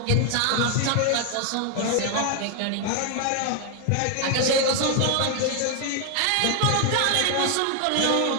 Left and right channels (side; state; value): both; different; correlation 0.00